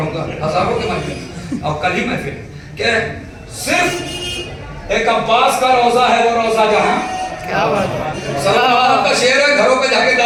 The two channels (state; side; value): identical; both; correlation 1.00